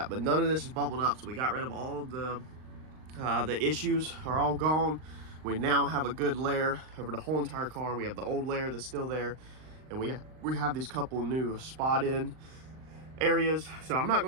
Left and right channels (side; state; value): left; late; 39 ms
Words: But none of this is bubbled up, so we got rid of all the issues are all gone. We now have a good layer over the whole entire car. We have the old layer that's still there, and we have these couple new spot in areas. So I'm not